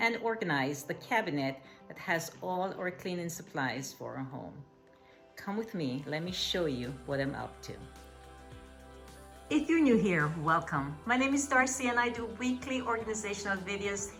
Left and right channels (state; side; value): identical; both; correlation 1.00